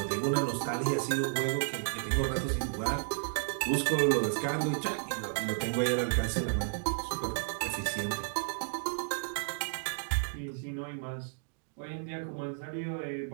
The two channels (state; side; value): silent; left; digital silence